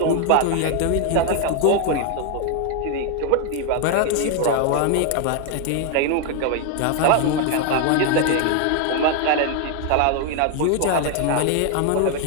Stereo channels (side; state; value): both; different; correlation 0.01